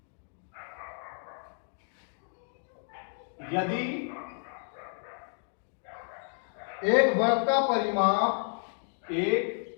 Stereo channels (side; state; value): right; silent; 57 dB below the other